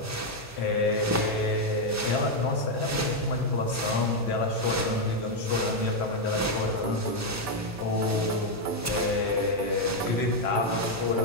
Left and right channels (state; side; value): normal; both; correlation 0.02